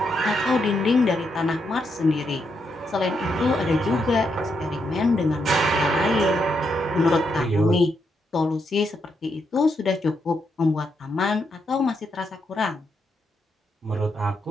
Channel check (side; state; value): both; normal; correlation 0.80